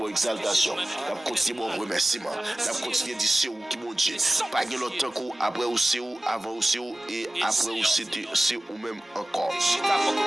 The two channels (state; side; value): normal; both; correlation 0.96